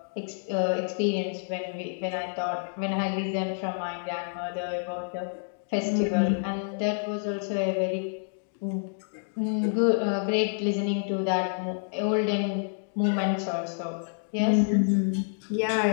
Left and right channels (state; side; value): silent; right; digital silence